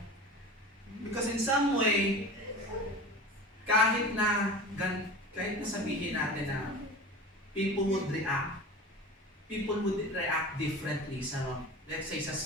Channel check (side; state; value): both; normal; correlation 0.35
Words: Because in some way, kahit na sabihin natin na people would react differently sa, let's say, sa